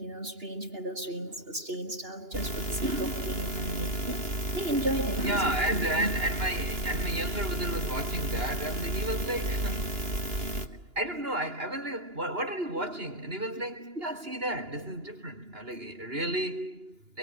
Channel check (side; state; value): left; late; 2.9 ms